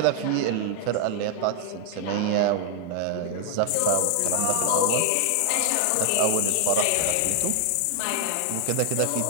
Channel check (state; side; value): different; both; correlation -0.01